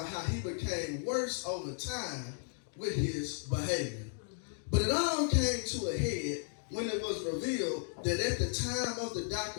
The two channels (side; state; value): right; silent; 55 dB below the other